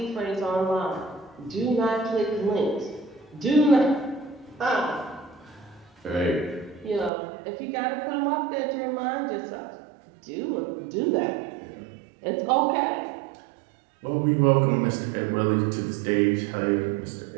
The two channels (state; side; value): drops out; left; at 7.1 s